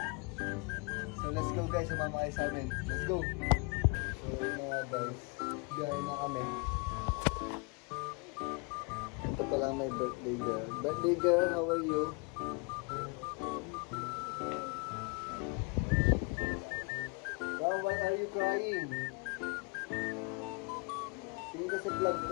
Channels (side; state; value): right; quieter; 31.7 dB